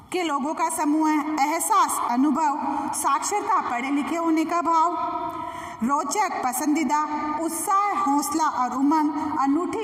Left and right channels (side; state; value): both; identical; correlation 1.00